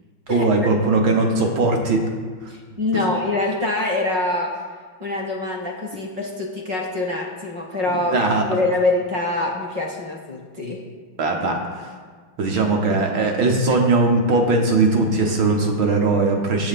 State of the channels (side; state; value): left; late; 6.2 ms